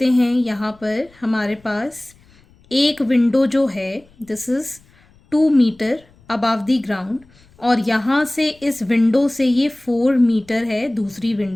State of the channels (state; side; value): noise; left; rumble, 29 dB below the sound